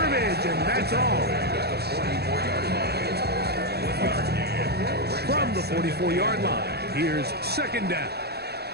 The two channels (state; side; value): late; left; 0.47 ms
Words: and that's all. From the 44-yard line, here's 2nd down.